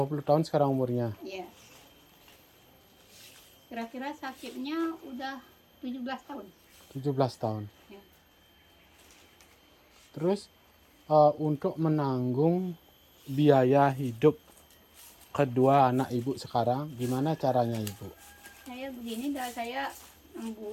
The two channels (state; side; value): identical; both; correlation 1.00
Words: tahun sekarang umurnya? Iya. Kira-kira sakitnya udah 17 tahun. 17 tahun. Ya. Terus untuk menanggung biaya hidup kedua anak ibu sekarang, gimana caranya ibu? Saya begini dah, saya